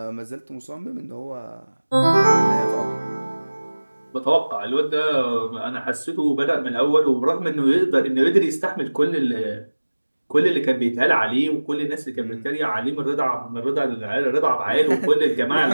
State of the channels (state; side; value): inverted; both; correlation -1.00